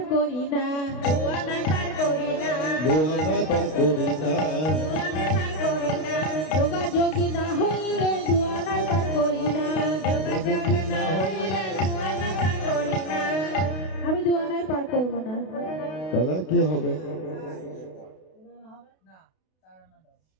করি না। দুয়ানা পার করি না, দুয়ানা তা করি না। দুয়ানা পার করি না। যোগাযোগী না হইলে দুয়ানাই পার করি না। যোগাযোগ না হইলে দুয়ানা পার করি না। আমি দুয়ানাই পার করব না। তাহলে আর কি হবে?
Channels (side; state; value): right; late; 32 ms